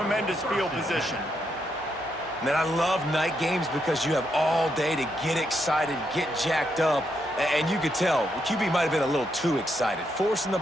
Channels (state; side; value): normal; both; correlation 0.79